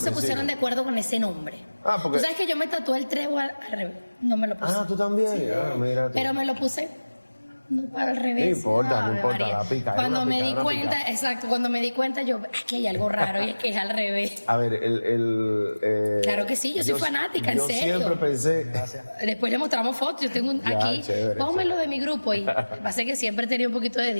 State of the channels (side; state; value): both; inverted; correlation -1.00